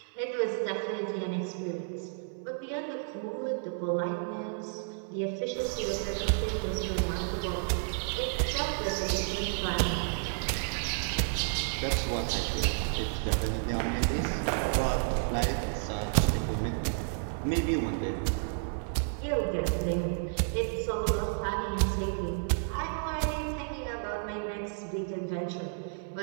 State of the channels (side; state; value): left; silent; 57 dB below the other